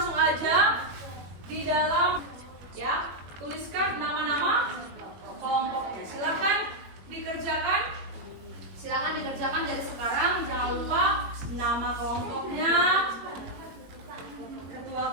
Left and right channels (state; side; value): late; left; 21 ms